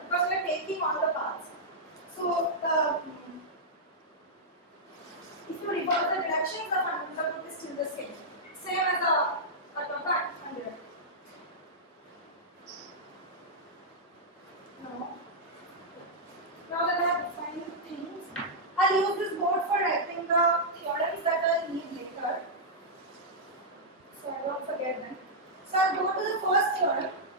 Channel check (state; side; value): normal; both; correlation -0.08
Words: because we are taking all the paths. So if you reverse the reductions, the fundamental group is still the same. Same as a top and direct. Now that I have defined the things, I'll use this board for writing the theorems that I'll need later. So I won't forget them. So I'll go to the first theorem,